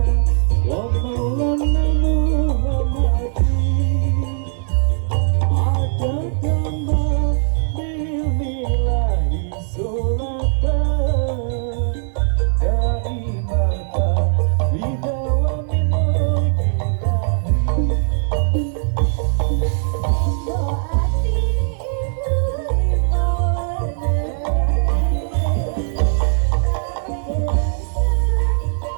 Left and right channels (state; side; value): silent; left; 61 dB below the other